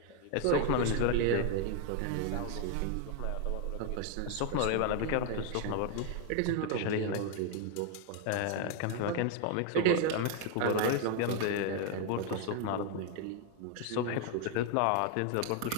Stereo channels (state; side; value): different; both; correlation 0.01